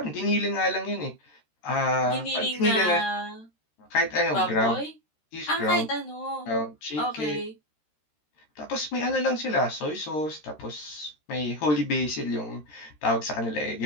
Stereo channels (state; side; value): late; right; 13 ms